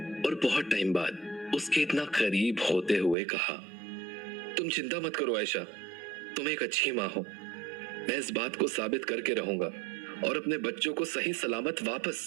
और बहुत टाइम बाद उसके इतना करीब होते हुए कहा, तुम चिंता मत करो आयशा, तुम एक अच्छी माँ हो। मैं इस बात को साबित करके रहूंगा और अपने बच्चों को सही सलामत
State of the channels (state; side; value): drops out; left; at 3.2 s